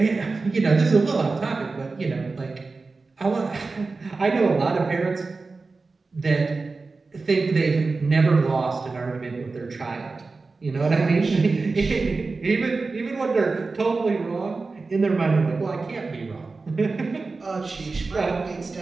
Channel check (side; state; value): left; quieter; 3.9 dB